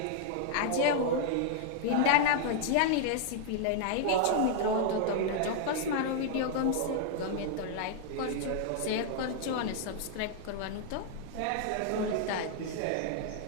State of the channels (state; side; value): different; both; correlation 0.00